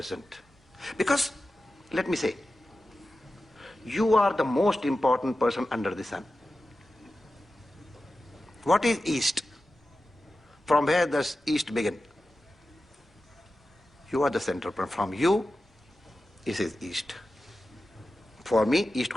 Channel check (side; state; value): both; normal; correlation 0.93